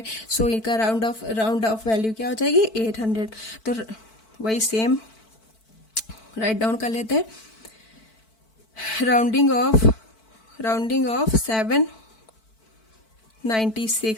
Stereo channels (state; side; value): late; right; 4.5 ms